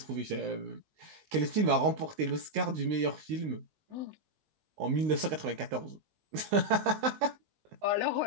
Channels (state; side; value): late; left; 19 ms